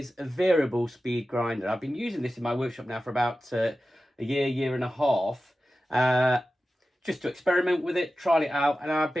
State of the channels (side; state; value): both; normal; correlation 0.94